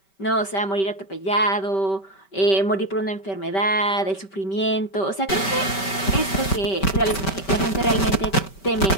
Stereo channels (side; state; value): right; late; 5.2 ms